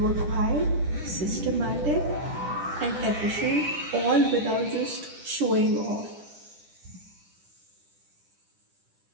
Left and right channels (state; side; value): late; left; 10 ms